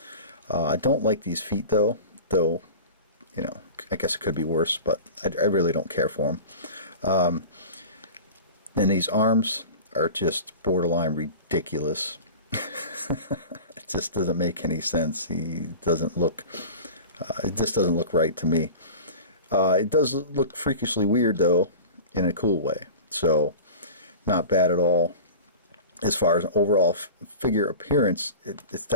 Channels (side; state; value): both; inverted; correlation -0.35